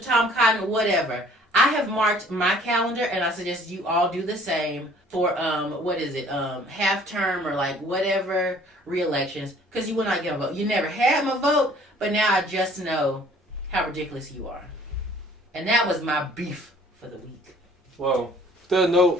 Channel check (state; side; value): normal; both; correlation 0.54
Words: Tom Cotton, whatever. I have marked my calendar, and I suggest you all do the same for, half term or like whatever re-elections, because you will not get a vote. You never had my vote, but now I just know how ridiculous you are. And that was my beef for the week. Well, with that